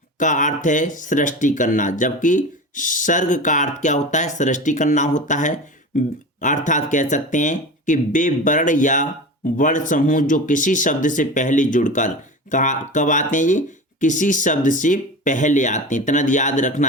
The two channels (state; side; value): normal; both; correlation 0.30